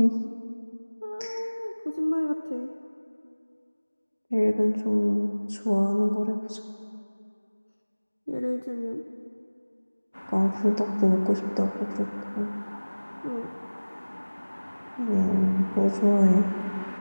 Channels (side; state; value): both; inverted; correlation -1.00